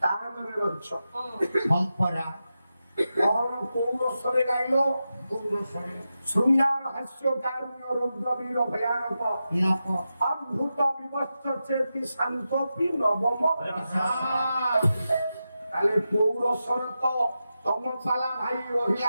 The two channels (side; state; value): both; inverted; correlation -0.90